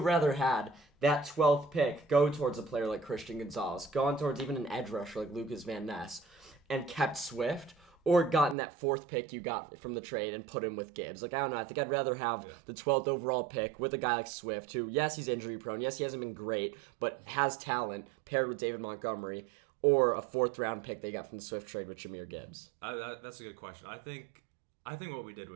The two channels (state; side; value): drops out; left; at 8.6 s